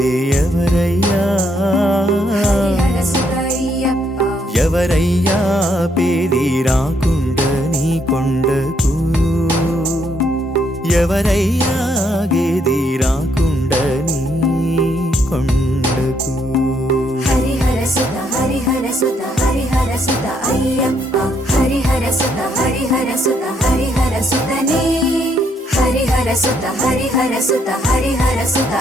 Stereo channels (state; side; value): normal; both; correlation 0.73